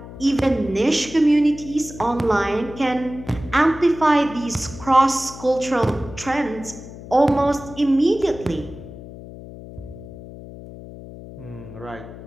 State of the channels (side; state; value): left; noise; hum, 15 dB below the sound